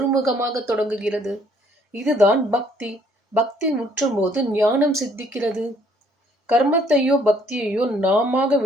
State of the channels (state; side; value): normal; both; correlation 0.63